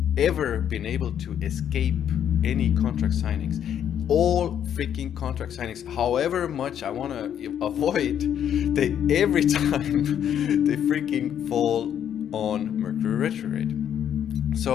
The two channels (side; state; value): right; quieter; 9.5 dB